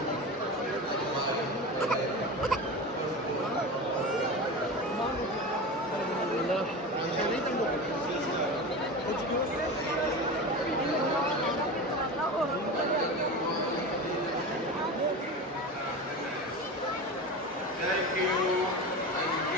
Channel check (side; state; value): both; normal; correlation 0.27